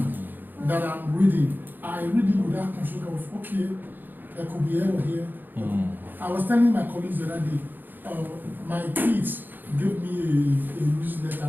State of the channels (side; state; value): left; late; 0.090 ms